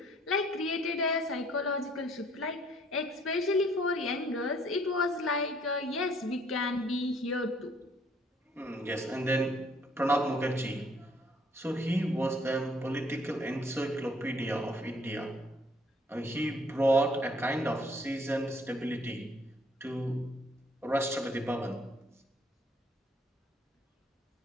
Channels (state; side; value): normal; both; correlation 0.62